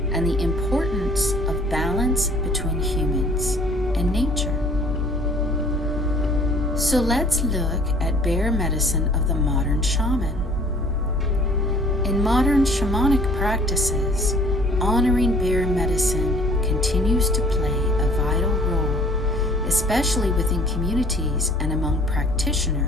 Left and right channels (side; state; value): both; normal; correlation 0.54